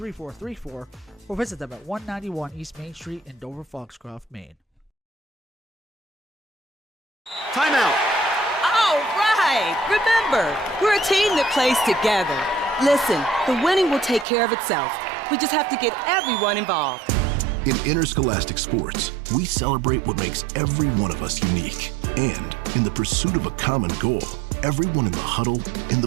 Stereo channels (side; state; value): left; drops out; at 14.2 s